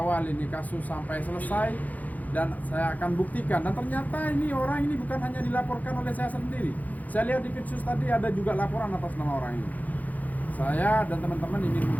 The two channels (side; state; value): right; late; 0.079 ms